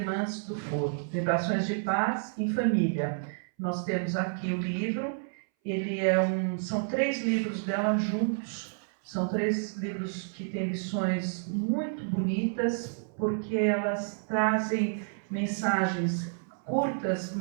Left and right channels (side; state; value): left; silent; 58 dB below the other